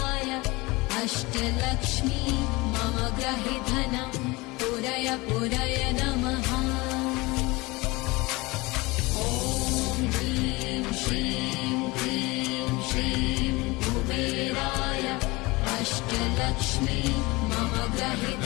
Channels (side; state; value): right; quieter; 23.2 dB